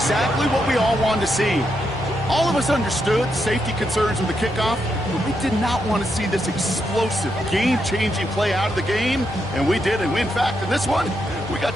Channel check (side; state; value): both; normal; correlation 0.82